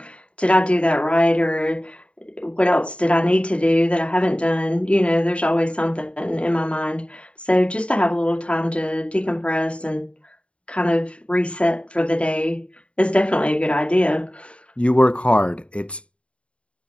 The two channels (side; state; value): right; late; 0.060 ms